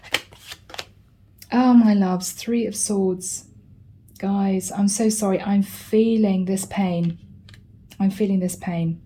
Oh, my loves, Three of Swords. Guys, I'm so sorry. I'm feeling this pain. I'm feeling this pain.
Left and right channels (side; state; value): both; identical; correlation 1.00